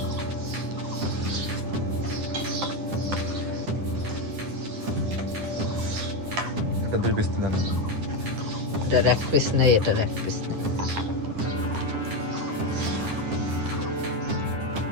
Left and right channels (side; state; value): left; late; 9.7 ms